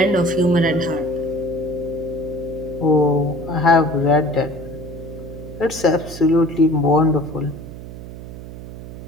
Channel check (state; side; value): noise; right; hum, 13 dB below the sound